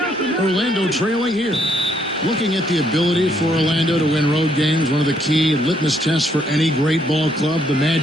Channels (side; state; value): both; normal; correlation 0.71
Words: Orlando trailing here. Looking at the ability for Orlando to win road games, one of the key litmus tests for any great ball club. The